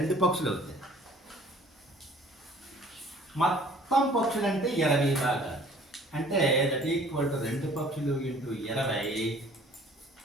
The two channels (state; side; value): normal; both; correlation 0.53